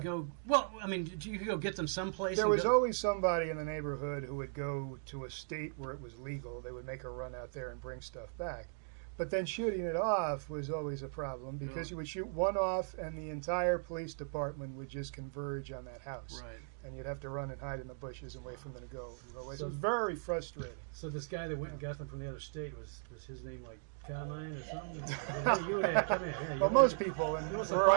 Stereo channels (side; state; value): left; silent; digital silence